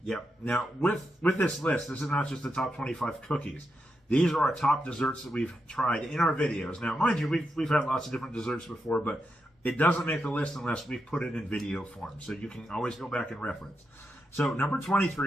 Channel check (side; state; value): both; normal; correlation 0.85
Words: Yep. Now, with this list, this is not just the top 25 cookies. These are our top desserts that we've tried in our videos. Now, mind you, we've had lots of different desserts before, but it doesn't make the list unless we put it in video form. So you can always go back and reference. So number